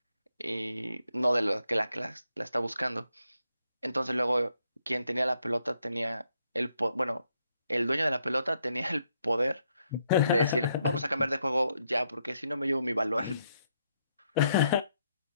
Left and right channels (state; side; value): inverted; both; correlation -0.76